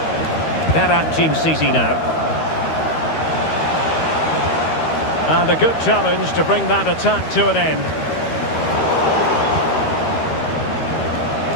Berat Jim City now. And a good challenge to bring that attack to an end.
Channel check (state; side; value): late; right; 13 ms